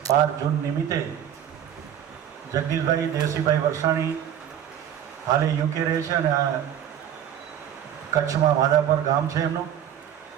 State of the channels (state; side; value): quieter; left; 9.9 dB